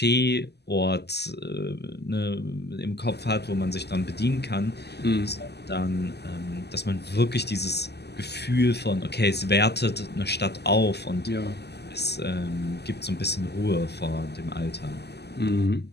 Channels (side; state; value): right; late; 0.49 ms